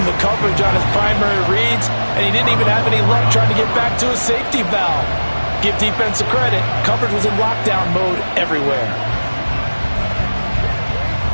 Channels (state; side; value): inverted; both; correlation -1.00